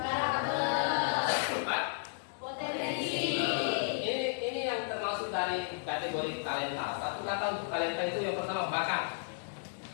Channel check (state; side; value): silent; right; digital silence